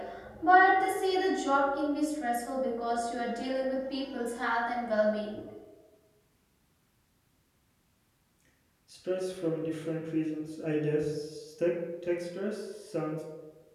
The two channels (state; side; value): identical; both; correlation 1.00